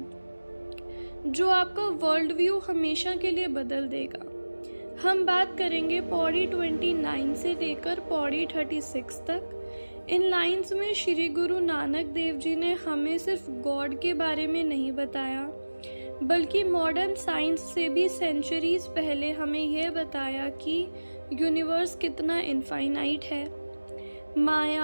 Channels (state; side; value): inverted; both; correlation -1.00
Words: जो आपका वर्ल्ड व्यू हमेशा के लिए बदल देगा। हम बात करेंगे पौड़ी 29 से लेकर पौड़ी 36 तक। इन लाइंस में श्री गुरु नानक देव जी ने हमें सिर्फ गॉड के बारे में नहीं बताया, बल्कि मॉडर्न साइंस से भी सेंचुरीज पहले हमें यह बताया कि यूनिवर्स कितना इनफाइनाइट है।